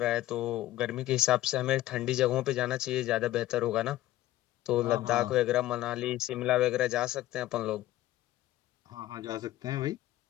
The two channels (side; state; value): right; quieter; 15.1 dB